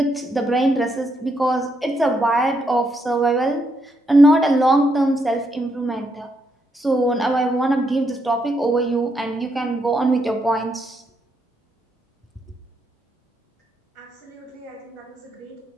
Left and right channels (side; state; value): both; normal; correlation 0.78